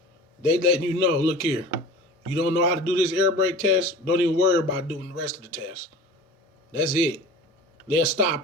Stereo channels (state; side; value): normal; both; correlation 0.37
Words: They letting you know, look here. You don't know how to do this air brake test, don't even worry about doing the rest of the test. That's it. They'll